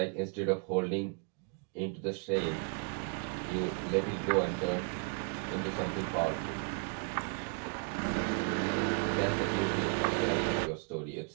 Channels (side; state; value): left; quieter; 37.3 dB